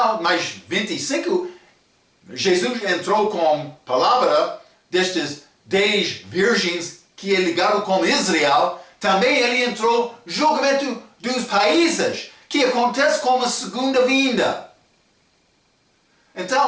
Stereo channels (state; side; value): identical; both; correlation 1.00